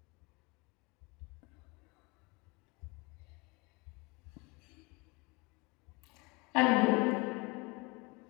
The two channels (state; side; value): quieter; right; 26.6 dB